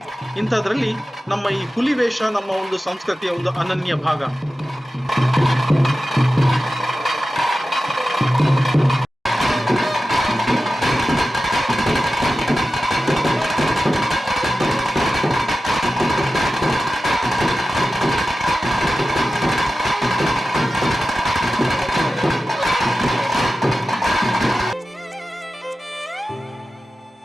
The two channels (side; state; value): both; normal; correlation 0.94